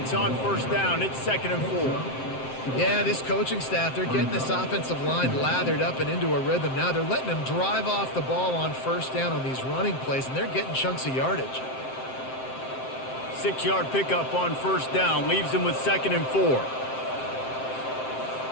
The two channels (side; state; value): right; late; 7.7 ms